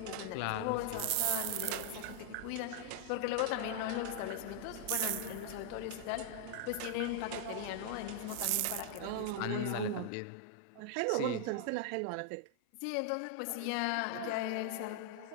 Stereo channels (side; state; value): both; different; correlation 0.00